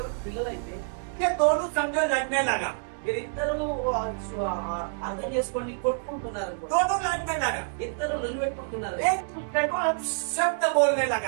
పిల్లలైతే ये दोनों समझो लड़ने लगा, వీరిద్దరూ అర్థం చేసుకొని కొట్టుకుంటున్నారు, दोनों लड़ने लगा, ఇద్దరు నిలబెట్టుకుంటున్నారు, एक दूसरे को शब्द बोलने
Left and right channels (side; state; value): left; silent; digital silence